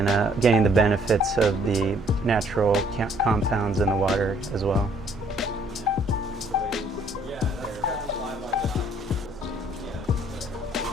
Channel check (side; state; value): both; normal; correlation 0.62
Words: getting the benefits of the natural compounds in the water as well.